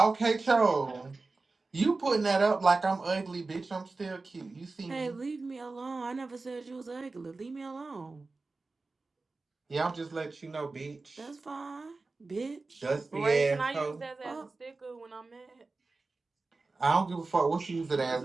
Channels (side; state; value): left; quieter; 3.6 dB